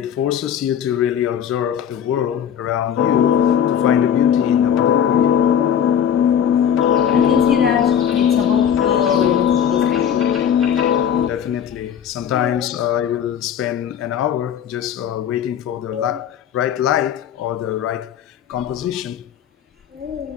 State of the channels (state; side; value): quieter; right; 8.9 dB